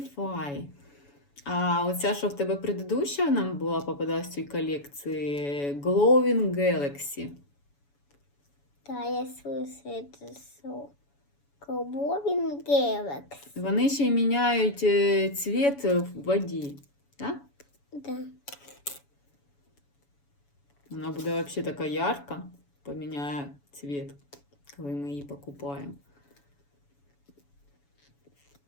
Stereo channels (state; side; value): late; right; 7.1 ms